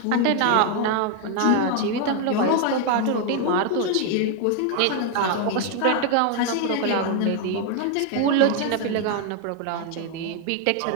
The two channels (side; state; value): both; different; correlation 0.00